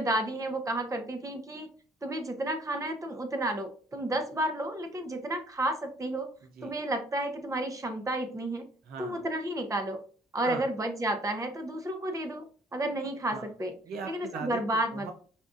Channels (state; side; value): normal; both; correlation 0.59